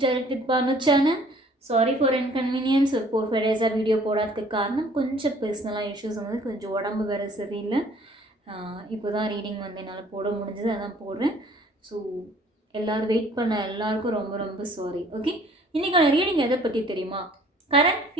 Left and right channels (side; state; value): both; normal; correlation 0.56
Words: with Banu channel. Sorry for inconvenience. ஒரு 4-5 days video போடாததுக்கு காரணம் கொஞ்சம் பர்சனலாக issues வந்து கொஞ்சம் உடம்பு வேறு சரியில்லை. இப்போ தான் ரீடிங் வந்து என்னால் போட முடிஞ்சது, அதான் போடுறேன். ஸோ எல்லோரும் வெயிட் பண்ண எல்லாருக்கும் ரொம்ப ரொம்ப சாரி. ஓகே, இன்றைக்கான ரீடிங் எதை பற்றி தெரியுமா? Current